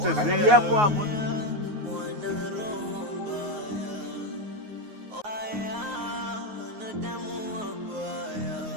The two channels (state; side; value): late; left; 9.5 ms